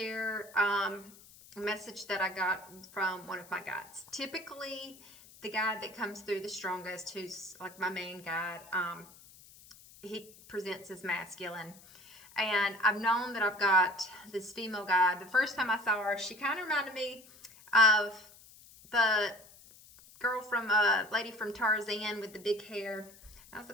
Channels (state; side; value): noise; left; hiss, 22 dB below the sound